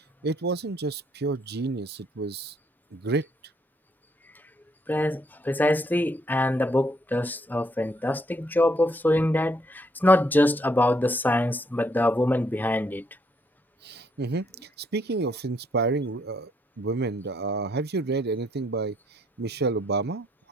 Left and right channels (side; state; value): both; normal; correlation 0.70